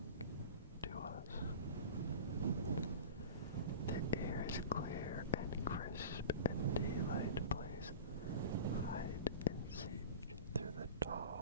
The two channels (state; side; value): inverted; both; correlation -0.33